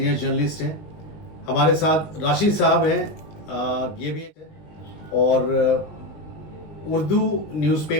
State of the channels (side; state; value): right; late; 19 ms